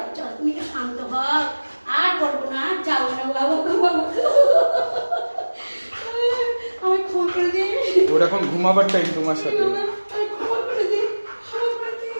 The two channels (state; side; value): inverted; both; correlation -1.00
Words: চলো তুমি একটু শান্ত হও, আর বলবো না, আর যাবো না বাবা বাবা। আমি ক্ষমা করে দিই। ওর এখন ঘুমাবার টাইম তোমার সাথে। আমি ক্ষমা করে দিই, ক্ষমা করে দিই